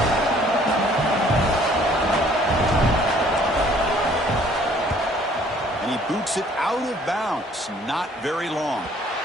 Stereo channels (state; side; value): normal; both; correlation 0.58